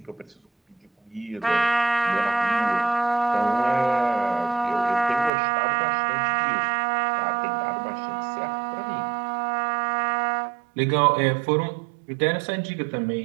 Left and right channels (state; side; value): drops out; left; at 5.3 s